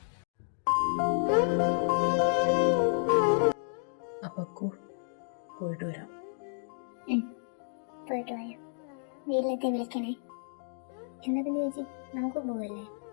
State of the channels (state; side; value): silent; right; digital silence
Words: അപ്പക്കു പോയിട്ട് വരാം. പോയിട്ട് വരാം. വീട്ടിലെത്തി വിളിക്കണേ. എന്നാ പിന്നെ ചേച്ചി നമുക്ക് പോവല്ലേ?